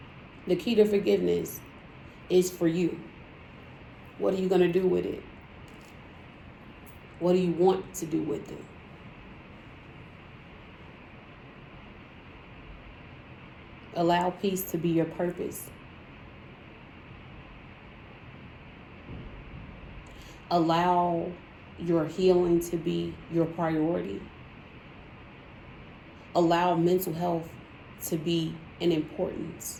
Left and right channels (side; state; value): both; identical; correlation 1.00